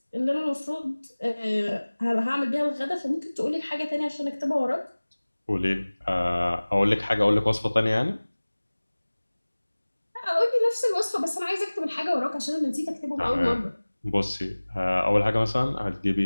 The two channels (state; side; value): inverted; both; correlation -1.00